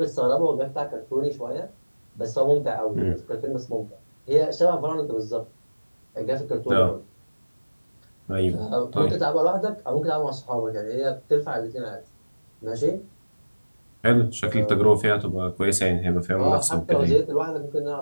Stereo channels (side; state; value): both; inverted; correlation -1.00